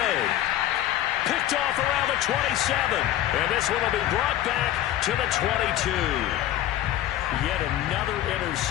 Picked off around the 27. And this one will be brought back to the 22. Yet another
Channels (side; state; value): right; quieter; 13.0 dB